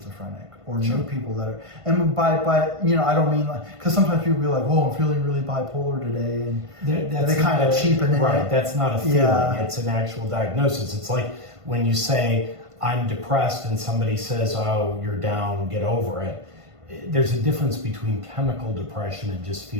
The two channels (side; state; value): left; late; 1.5 ms